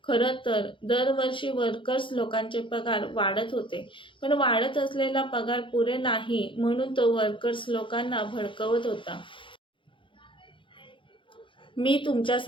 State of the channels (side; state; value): right; late; 0.25 ms